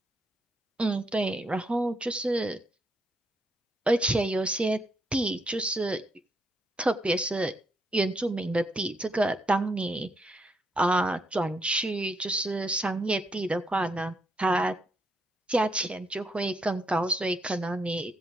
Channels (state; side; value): normal; both; correlation 0.76